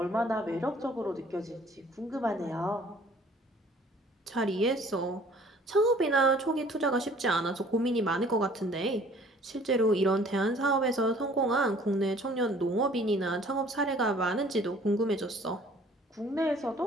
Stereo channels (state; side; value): normal; both; correlation 0.54